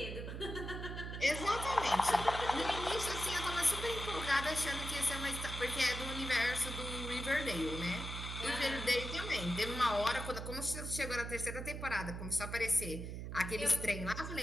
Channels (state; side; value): noise; right; hum, 6 dB below the sound